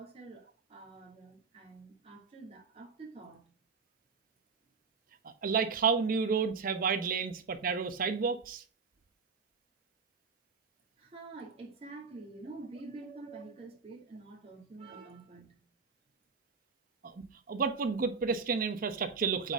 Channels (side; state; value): left; quieter; 5.1 dB